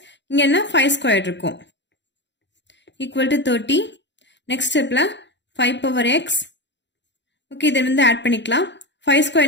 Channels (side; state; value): right; late; 0.52 ms